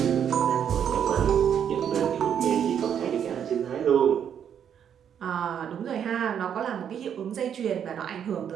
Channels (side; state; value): left; quieter; 8.6 dB